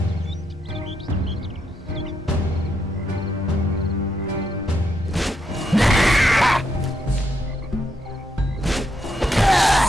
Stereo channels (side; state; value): both; normal; correlation 0.80